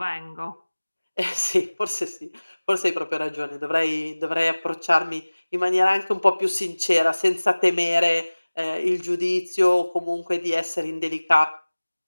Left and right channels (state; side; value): inverted; both; correlation -1.00